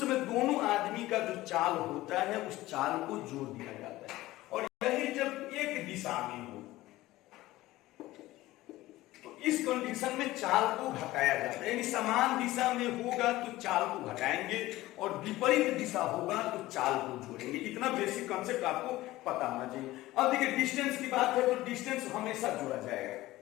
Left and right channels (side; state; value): right; quieter; 17.3 dB